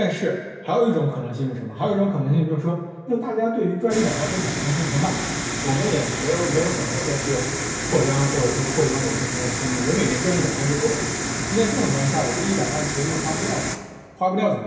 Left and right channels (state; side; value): identical; both; correlation 1.00